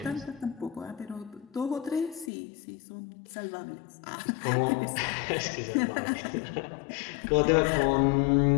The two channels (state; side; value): drops out; right; at 2.3 s